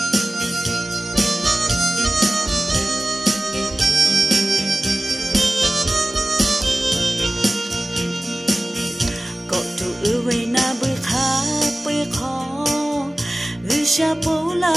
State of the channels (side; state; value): both; normal; correlation 0.96